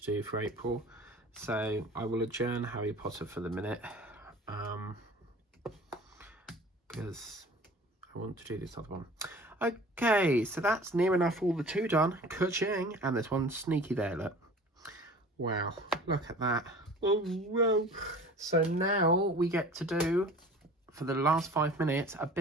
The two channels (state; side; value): normal; both; correlation 0.43